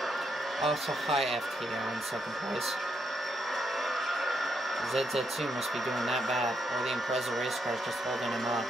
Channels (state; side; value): normal; both; correlation 0.78